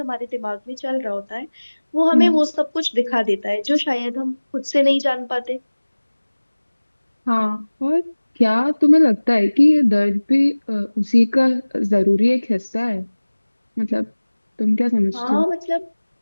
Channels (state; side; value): inverted; both; correlation -1.00